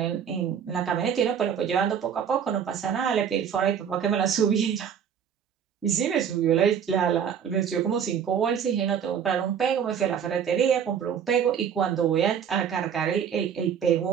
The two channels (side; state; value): left; quieter; 8.0 dB